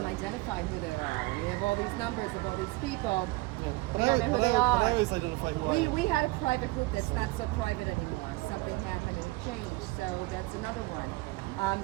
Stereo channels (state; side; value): quieter; left; 21.8 dB